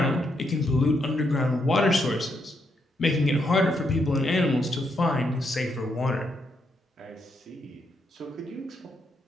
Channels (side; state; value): both; normal; correlation 0.78